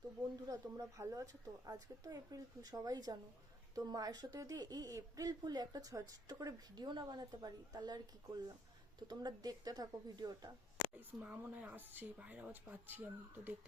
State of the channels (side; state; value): both; normal; correlation 0.68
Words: বন্ধুরা তোমরা ভালো আছো তো? আজকে তো এপ্রিল ফুল, সবাই জানো। তো মায়ের সাথে যদি এই এপ্রিল ফুলে একটা ছোট্ট করে ভিডিও না বানাতে পারি তাহলে আর কি করলাম। তো তোমরা দেখতে থাকো ভিডিওটা। মা মনে হয় আসছে, বাইরে আওয়াজ পাচ্ছি আমি, তো